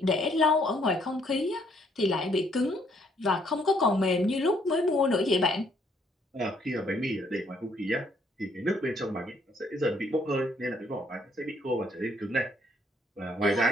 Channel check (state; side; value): normal; both; correlation 0.67